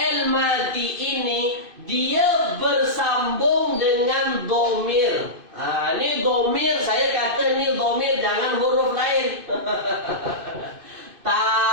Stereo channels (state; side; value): late; left; 2.5 ms